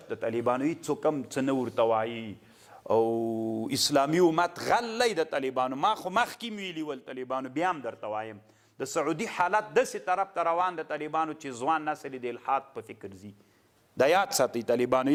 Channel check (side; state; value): both; identical; correlation 1.00